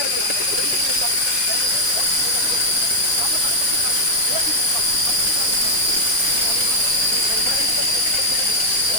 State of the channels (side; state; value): left; late; 1.4 ms